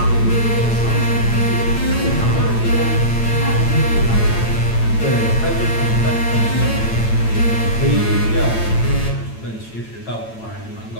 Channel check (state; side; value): late; right; 8.9 ms